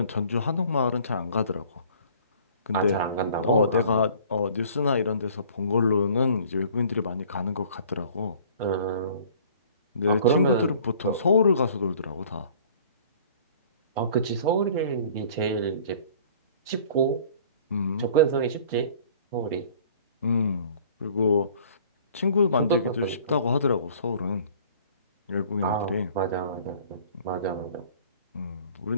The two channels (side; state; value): both; inverted; correlation -0.51